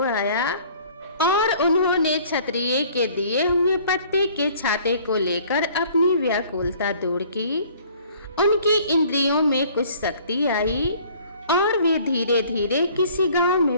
आया और उन्होंने क्षत्रिय के दिए हुए पत्ते के छाते को लेकर अपनी व्याकुलता दूर की। उनकी इंद्रियों में कुछ शक्ति आई और वे धीरे धीरे किसी गांव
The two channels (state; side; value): inverted; both; correlation -0.54